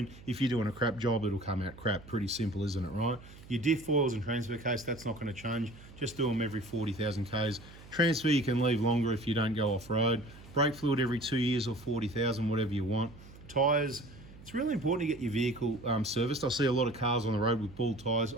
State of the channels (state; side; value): noise; right; hum, 19 dB below the sound